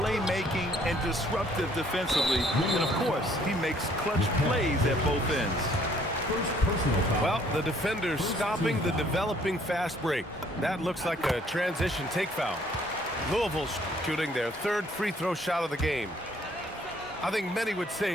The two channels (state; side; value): normal; both; correlation 0.62